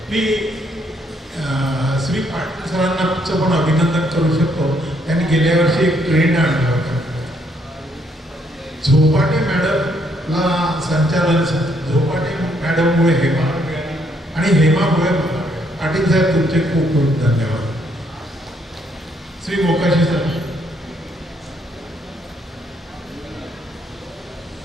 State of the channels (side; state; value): both; normal; correlation 0.71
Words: मी श्री पाटील सरांचं पण अभिनंदन करू शकतो. त्यांनी गेल्या वर्षी एक ट्रेंड आणला होता. झोपाटे मॅडमला संचालन, झोपाटे मॅडममुळे हेमा आणि हेमामुळे मला. पाटील साहेब तुमचे खूप खूप धन्यवाद. श्री मोकाशी सर.